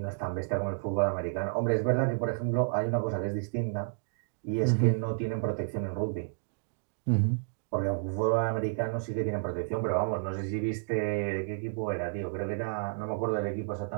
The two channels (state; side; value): silent; left; digital silence